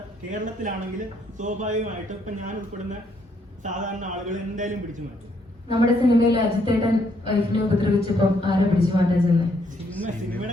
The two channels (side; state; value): both; normal; correlation 0.71